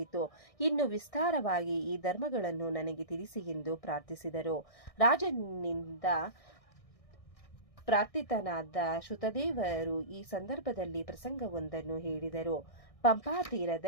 ಇನ್ನು ವಿಸ್ತಾರವಾಗಿ ಈ ಧರ್ಮಗಳನ್ನು ನನಗೆ ತಿಳಿಸಿ ಎಂದು ಪ್ರಾರ್ಥಿಸಿದರು. ರಾಜನಿಂದ ಪ್ರಾರ್ಥಿತನಾದ ಶ್ರುತದೇವರು ಈ ಸಂದರ್ಭದಲ್ಲಿ ಪ್ರಸಂಗವೊಂದನ್ನು ಹೇಳಿದರು. ಪಂಪಾ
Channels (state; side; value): late; right; 1.6 ms